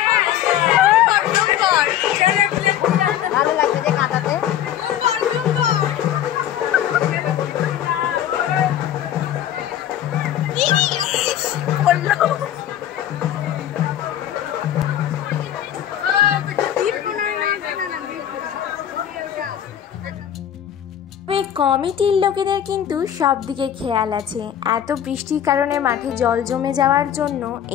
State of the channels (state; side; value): quieter; right; 10.8 dB